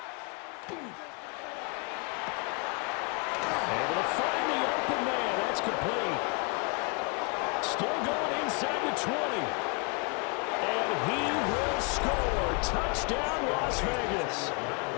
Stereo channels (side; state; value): right; quieter; 34.4 dB